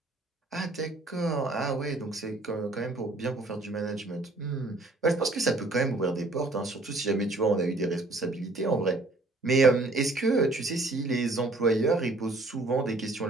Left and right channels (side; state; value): left; quieter; 3.0 dB